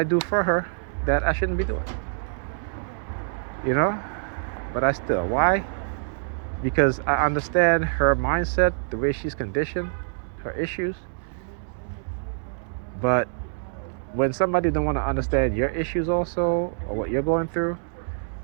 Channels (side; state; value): left; silent; 61 dB below the other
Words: do for her that I shouldn't be doing. You know? But I still. Why? Because I understand her mindset, the way she's conditioned, her issues. But when somebody don't want to understand your issues also, or what you're going through,